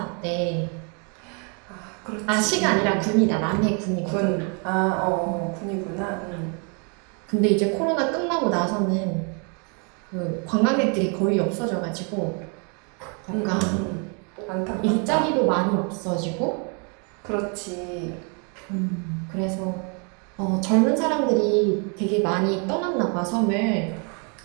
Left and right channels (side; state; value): left; quieter; 36.6 dB